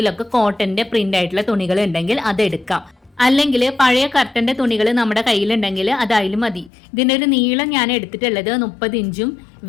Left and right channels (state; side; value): drops out; right; at 6.7 s